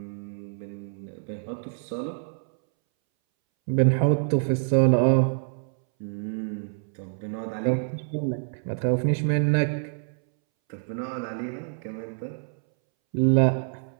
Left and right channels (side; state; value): left; silent; 61 dB below the other